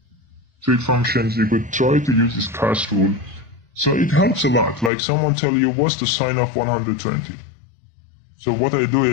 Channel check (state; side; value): drops out; right; at 4.9 s